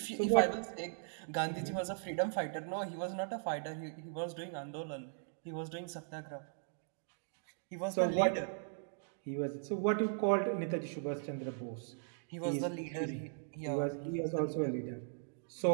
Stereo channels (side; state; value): left; silent; digital silence